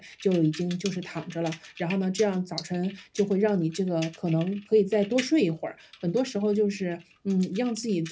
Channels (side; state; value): both; identical; correlation 1.00